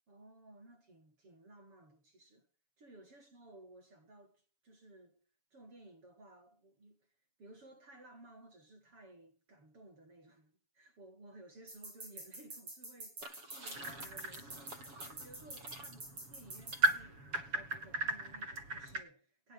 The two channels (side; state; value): left; late; 7.1 ms